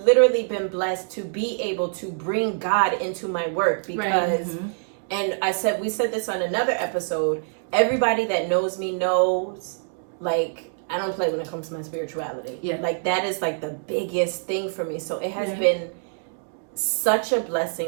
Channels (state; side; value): silent; left; digital silence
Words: been blessed to be able to bring God into my work, because and we said this on another episode, everybody that knows me knows, like, I don't play when it comes to my spirituality. Like that is like the biggest thing for me. So it has been such a